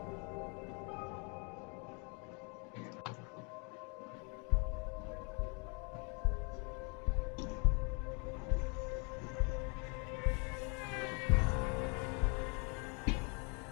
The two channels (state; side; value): quieter; right; 34.3 dB